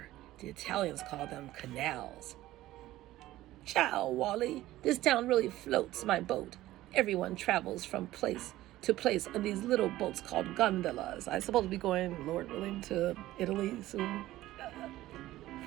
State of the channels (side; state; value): left; quieter; 15.7 dB